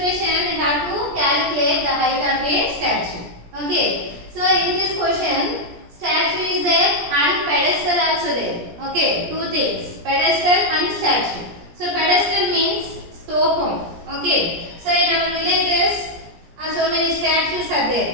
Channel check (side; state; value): left; late; 17 ms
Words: we have to calculate the height of a statue. Okay. So in this question, statue is there and pedestal also there. Okay. Two things, pedestal and statue. So pedestal means stopam. Okay. So in our villages, so many statues are